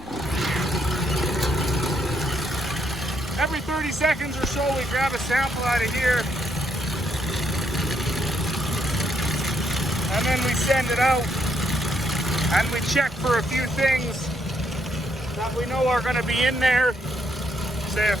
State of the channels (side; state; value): both; normal; correlation 0.74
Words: Every 30 seconds or so we grab a sample out of here and then we send it out, and we check for a few things that we know are going to be in there, say a